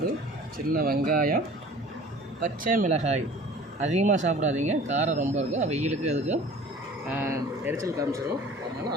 சின்ன வெங்காயம், பச்சை மிளகாய். அதிகமாக சாப்பிடாதீங்க, காரம் ரொம்ப இருக்கும். வெயிலுக்கு அதுக்கும் எரிச்சல் காமிச்சிடும்.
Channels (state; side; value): normal; both; correlation 0.45